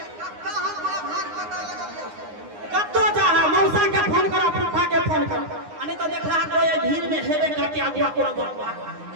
कत्तो जा मौसा के फोन कर फूफा के फोन कर अने तो देखला कोई भीड़ में हेबे करके आगुआ कोनो गरबा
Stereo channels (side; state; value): left; late; 9.7 ms